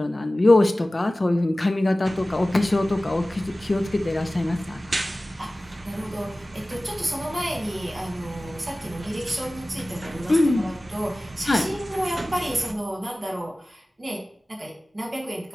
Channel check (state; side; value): normal; both; correlation 0.97